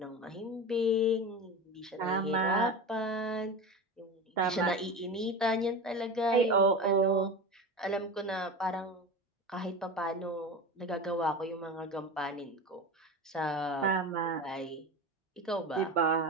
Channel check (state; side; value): normal; both; correlation 0.27